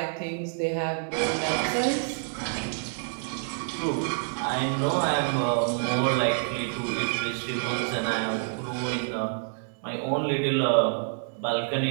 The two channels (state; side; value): silent; left; digital silence